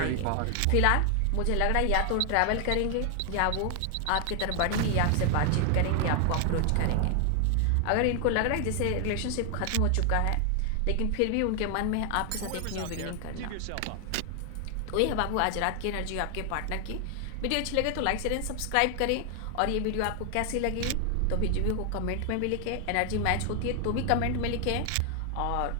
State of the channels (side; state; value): both; different; correlation 0.00